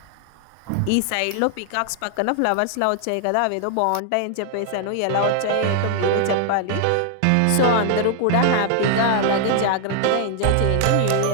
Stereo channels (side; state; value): both; different; correlation 0.00